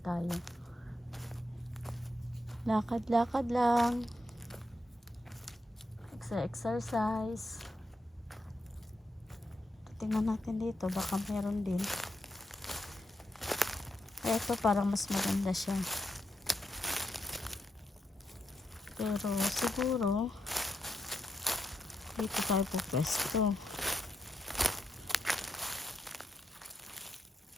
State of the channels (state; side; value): normal; both; correlation 0.82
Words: tayo. Lakad lang. Exercise. Tingnan natin dito, baka meron din. Ito parang mas maganda siya. Pero siguro dito tayo pupwesto.